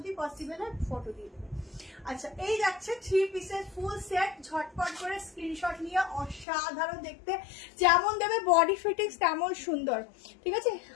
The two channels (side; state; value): right; drops out; at 6.5 s